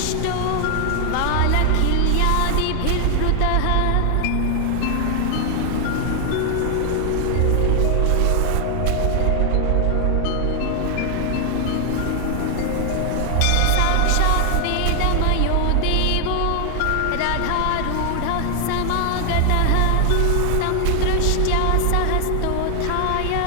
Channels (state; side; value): different; both; correlation 0.00